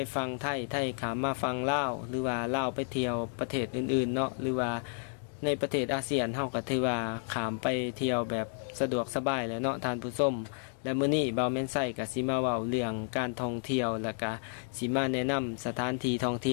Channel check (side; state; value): right; silent; 57 dB below the other